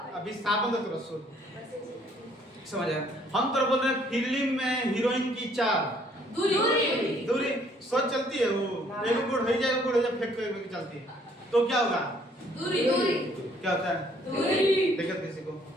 अभी विस्थापन तो तुरंत सोच समझ आया। हम तो बोल रहे हैं फिल्म में हीरोइन की चाल, दूरी सोच चलती है, वो एक गुड़ हो जाए फेंक के चलती है, तो क्या होगा? दूरी। क्या होता है? दूरी। देखो किसी को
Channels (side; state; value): both; normal; correlation 0.63